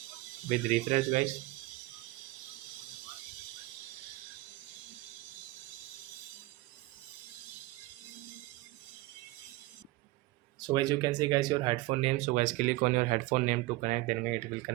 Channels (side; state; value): left; quieter; 19.9 dB